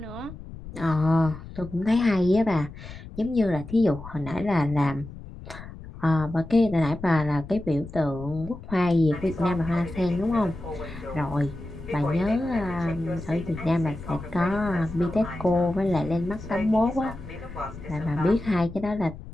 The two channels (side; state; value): left; noise; rumble, 14 dB below the sound